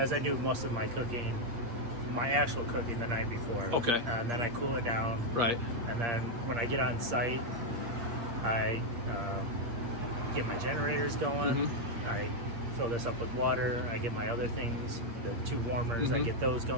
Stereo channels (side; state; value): left; late; 8.5 ms